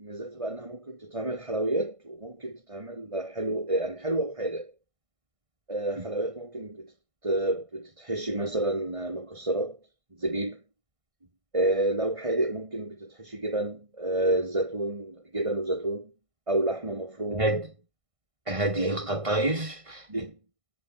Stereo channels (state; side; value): late; left; 1.6 ms